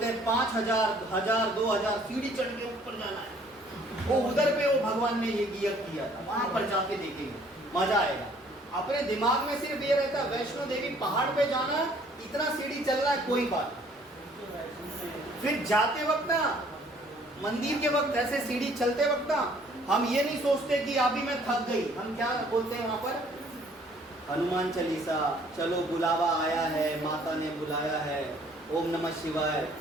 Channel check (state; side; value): normal; both; correlation 0.59